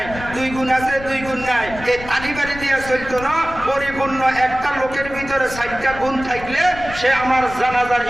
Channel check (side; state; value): left; noise; rumble, 13 dB below the sound